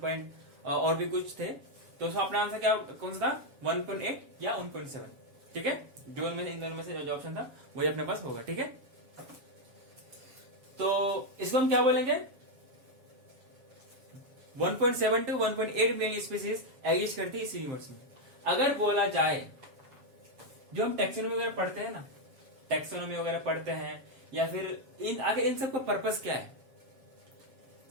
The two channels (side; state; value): left; late; 7.6 ms